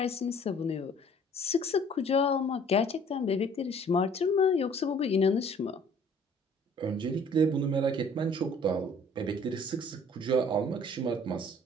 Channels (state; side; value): normal; both; correlation 0.55